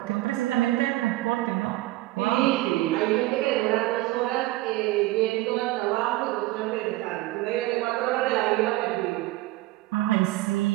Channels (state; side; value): quieter; left; 18.1 dB